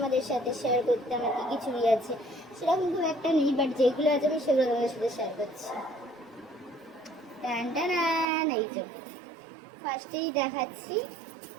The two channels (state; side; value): drops out; left; at 8.2 s